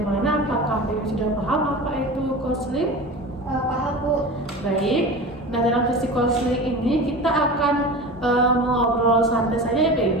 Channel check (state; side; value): normal; both; correlation 0.32